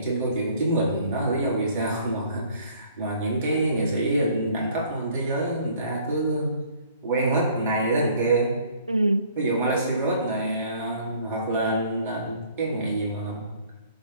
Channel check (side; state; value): both; inverted; correlation -0.57